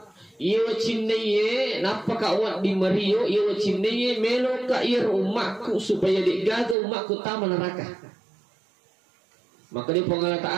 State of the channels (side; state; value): left; drops out; at 6.8 s